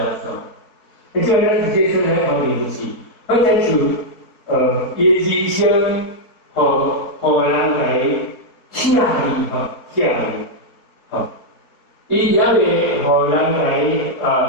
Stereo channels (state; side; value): late; right; 4.4 ms